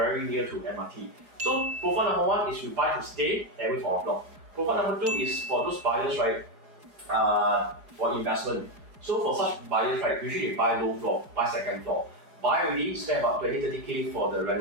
near to MRT. So profile number one is you buy to stay and wait for en bloc. Profile number two is for those buyers, right, for investment. So for such buyers, right, usually they buy low floor, buy second floor. Buy already, spend about 20-30K for the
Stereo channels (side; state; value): left; late; 4.8 ms